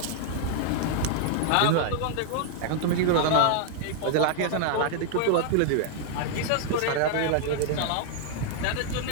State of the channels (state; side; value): different; both; correlation 0.00